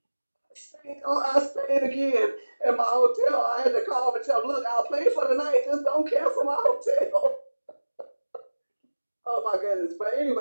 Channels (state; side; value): inverted; both; correlation -1.00